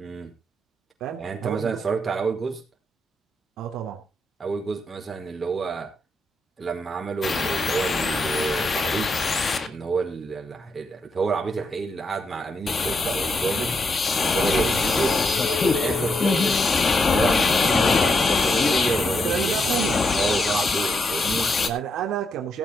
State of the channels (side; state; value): both; normal; correlation 0.80